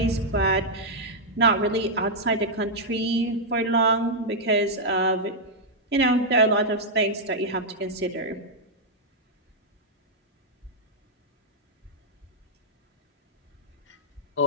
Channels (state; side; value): normal; both; correlation -0.05